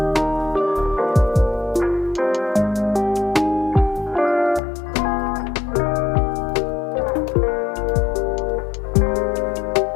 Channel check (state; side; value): drops out; right; at 4.6 s